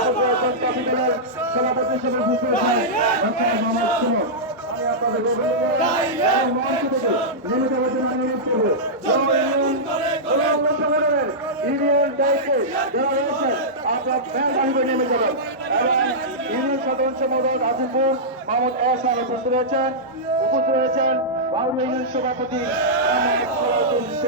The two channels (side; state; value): both; normal; correlation -0.12